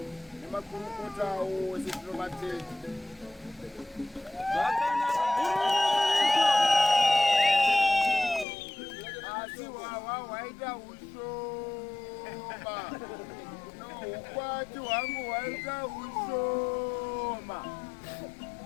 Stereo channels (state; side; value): drops out; right; at 8.5 s